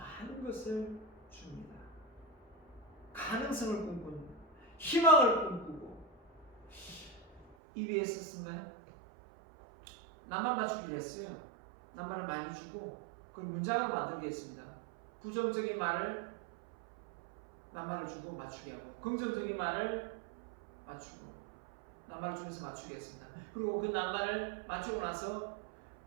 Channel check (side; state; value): left; drops out; at 7.6 s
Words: 것을 줍니다. 가능성을 꿈꾸는, 희망을 꿈꾸고, EBS 쓴가요? 낱말 맞추기를 했어요. 낱말을 많이 주고 그걸 문장으로 만들겠습니다. 부정적인 말을 낱말을 주고 맞추게 하고 긍정적인 말을 맞추고 낱말을 주면서 맞추게 했습니다. 그리고 그 낱말을 맞추고 나서